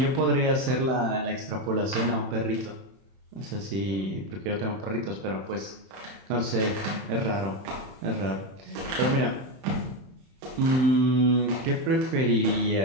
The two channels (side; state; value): left; late; 31 ms